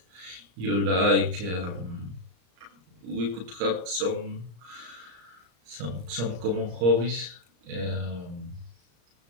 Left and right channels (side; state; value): left; late; 34 ms